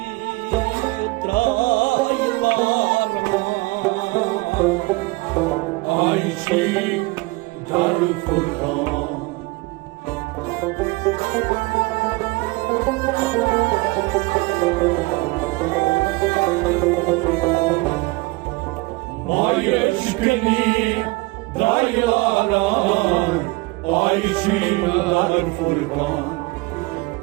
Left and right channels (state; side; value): quieter; left; 24.1 dB